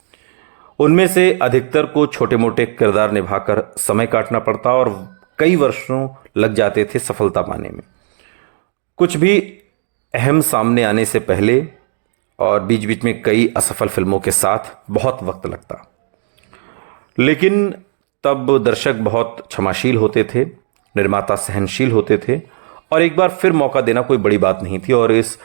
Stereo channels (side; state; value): left; silent; digital silence